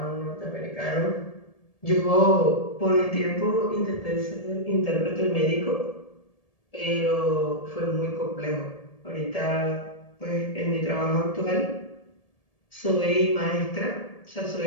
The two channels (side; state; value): right; late; 1.7 ms